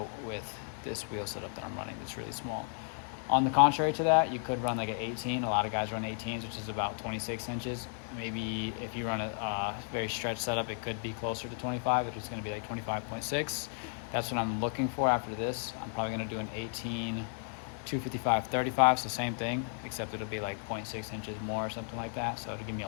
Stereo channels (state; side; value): silent; right; 55 dB below the other